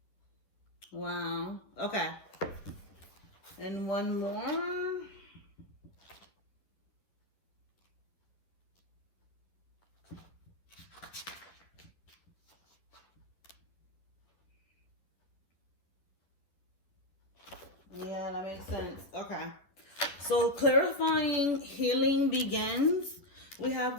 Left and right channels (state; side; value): late; right; 11 ms